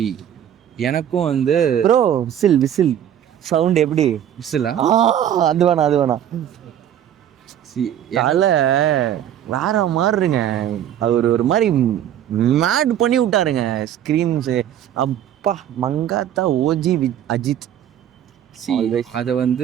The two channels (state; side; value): quieter; left; 10.4 dB